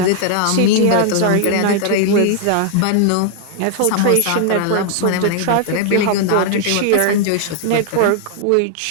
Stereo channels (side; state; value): both; different; correlation 0.00